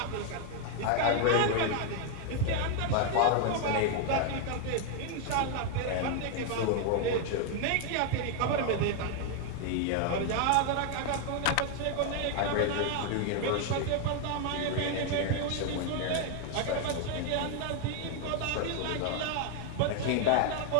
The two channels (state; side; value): different; both; correlation 0.01